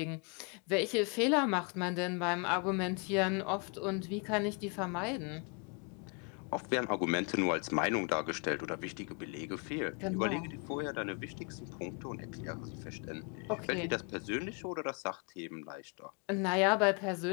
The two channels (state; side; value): quieter; right; 35.1 dB